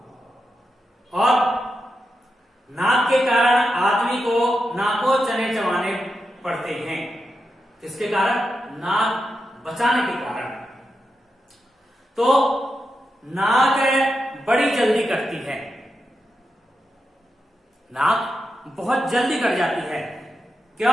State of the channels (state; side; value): normal; both; correlation 0.87